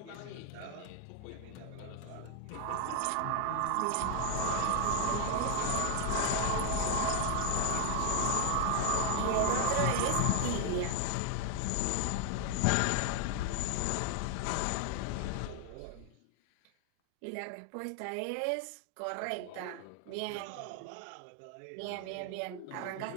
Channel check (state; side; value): different; both; correlation 0.00